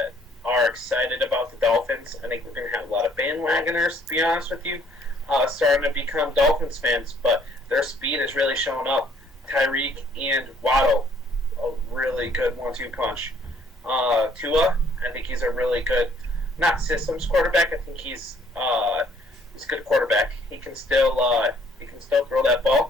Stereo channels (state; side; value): normal; both; correlation 0.62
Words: excited about the Dolphins. I think we're going to have a lot of bandwagoners, to be honest with you, starting to become Dolphins fans, but their speed is really showing up. Tyreek and Waddle, a really good 1-2 punch. Tua, I think he's a really good, not systems quarterback. I think he's a good quarterback. He can still throw that